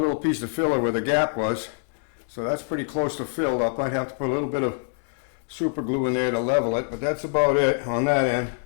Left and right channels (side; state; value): right; silent; digital silence